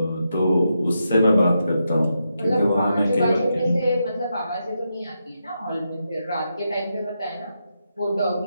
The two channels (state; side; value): inverted; both; correlation -0.84